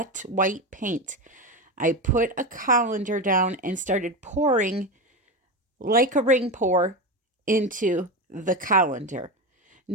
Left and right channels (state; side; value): normal; both; correlation 0.19